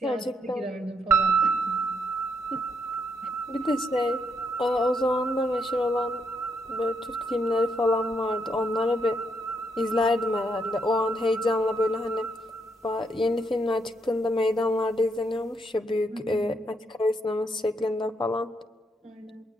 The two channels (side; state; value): both; normal; correlation 0.76